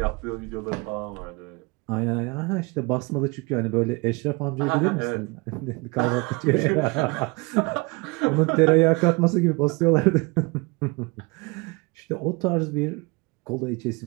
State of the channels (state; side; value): quieter; left; 27.1 dB